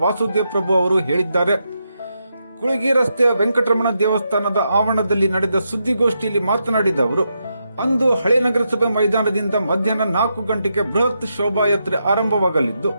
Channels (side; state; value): both; inverted; correlation -0.83